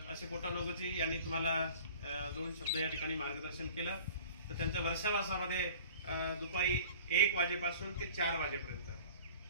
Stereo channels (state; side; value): inverted; both; correlation -0.44